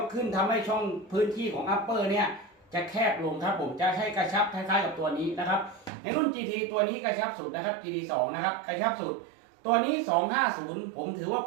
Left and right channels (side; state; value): left; drops out; at 5.9 s